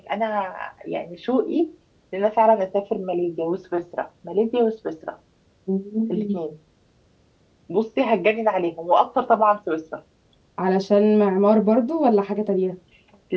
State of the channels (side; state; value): both; identical; correlation 1.00